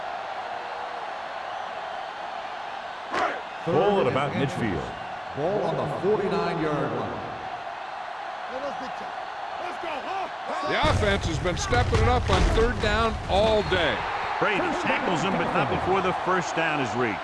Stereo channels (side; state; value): both; identical; correlation 1.00